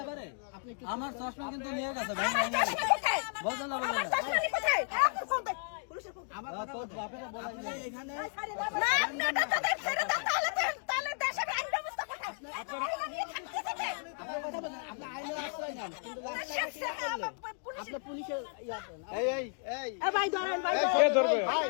পারে, আমার চশমা কিন্তু নিয়ে গেছে ভাই, বুঝলেন না? বুঝলেন না? আমার কথা বলতে আপনি এখানে কথা বলেন, আপনি আইনের আশ্রয় নেন, কিন্তু আপনি পুলিশের কে ধরবে?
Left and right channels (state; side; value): silent; right; 55 dB below the other